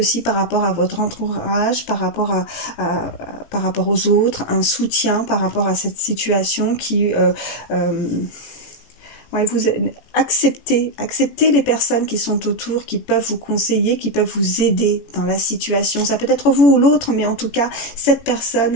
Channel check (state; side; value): late; right; 17 ms